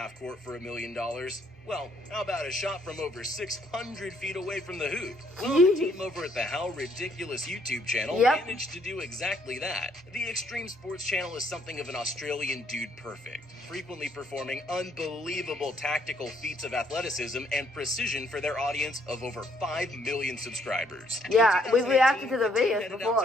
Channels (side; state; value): both; normal; correlation 0.68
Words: court for $1 million? Well, how about a shot from over 600 feet away from the hoop? Well, the team over at the How Ridiculous YouTube channel managed to do exactly that. The Extreme Sports channel is something of an Australian dude perfect, frequently performing unbelievable tactical feats of athleticism and precision for their audience of over 5 million subscribers. Yeah, In we reacted to the 2018, videos headed before.